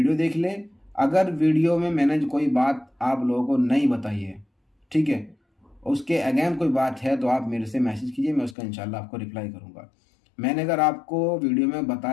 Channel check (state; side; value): drops out; right; at 8.6 s